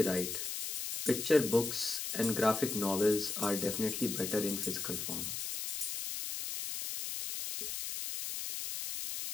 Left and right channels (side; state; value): left; noise; hiss, 4 dB below the sound